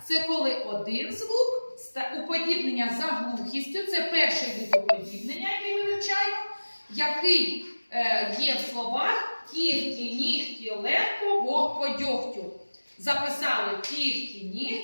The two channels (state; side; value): inverted; both; correlation -1.00